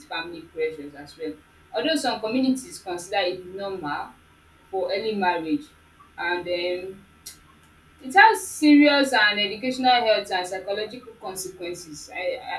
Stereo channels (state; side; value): identical; both; correlation 1.00